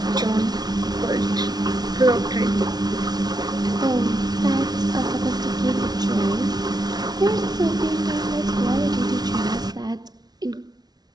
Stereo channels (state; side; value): late; left; 0.19 ms